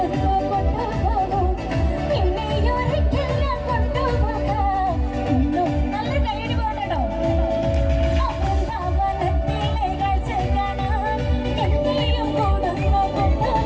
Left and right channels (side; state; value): both; identical; correlation 1.00